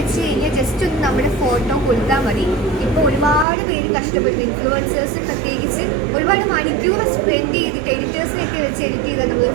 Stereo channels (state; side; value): drops out; left; at 3.5 s